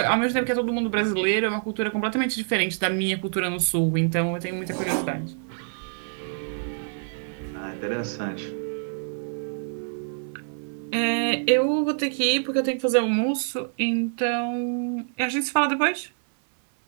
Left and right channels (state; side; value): silent; left; 61 dB below the other